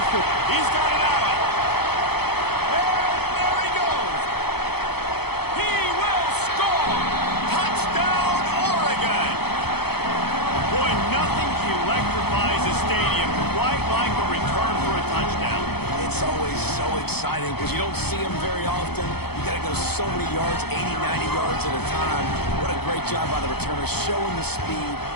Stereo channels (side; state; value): right; late; 0.97 ms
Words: Force. He's got it out. Exciting because you don't see them very often. You got to go so many yards, 80, 90 yards at a time. What a great job by the returners, showing the speed,